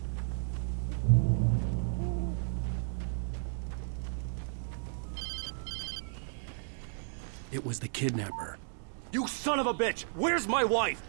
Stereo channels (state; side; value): silent; left; 55 dB below the other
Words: It was the kidnapper. You son of a bitch! Where's my wife?